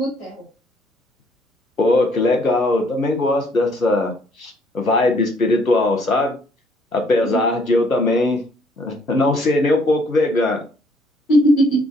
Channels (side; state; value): both; normal; correlation 0.65